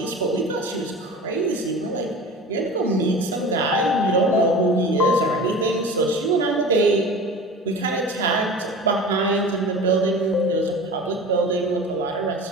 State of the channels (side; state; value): both; normal; correlation 0.36